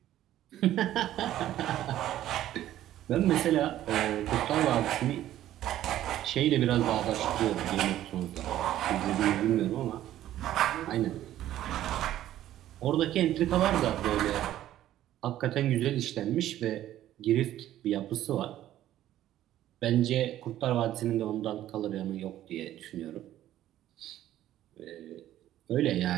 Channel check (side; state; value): left; quieter; 13.0 dB